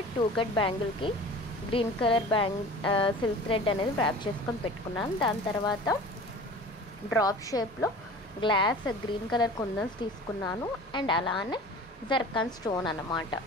కట్ బ్యాంగిల్కి గ్రీన్ కలర్ సిల్క్ థ్రెడ్ అనేది ర్యాప్ చేసుకొని పెట్టుకున్నాను. దాని తర్వాత డ్రాప్ షేప్లో గ్లాస్ గ్రీన్ కలర్ కుందన్స్ తీసుకున్నాను. అండ్ అలానే జర్కాన్ స్టోన్ అన్నమాట.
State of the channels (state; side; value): normal; both; correlation 0.40